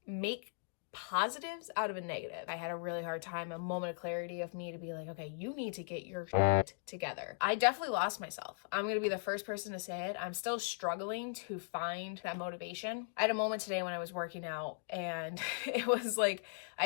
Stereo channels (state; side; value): silent; right; digital silence